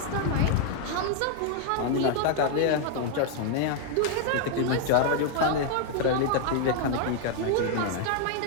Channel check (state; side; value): different; both; correlation 0.00